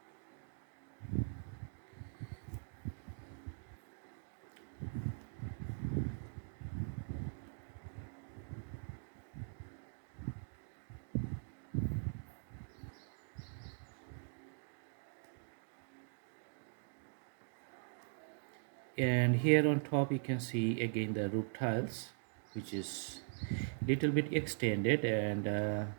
And here on top you can see again the roof tiles, which is little bit extended, and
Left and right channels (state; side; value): silent; left; digital silence